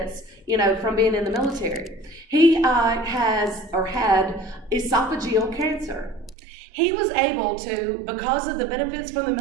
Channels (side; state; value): left; drops out; at 6.4 s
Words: from being in the military. He had esophageal cancer. He was able to, because of the benefits from the